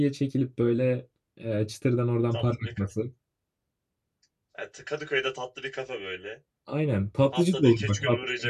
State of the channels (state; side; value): identical; both; correlation 1.00